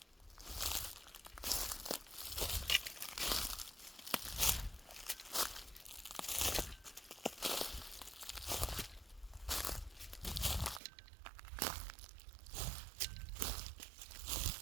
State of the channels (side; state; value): left; drops out; at 10.8 s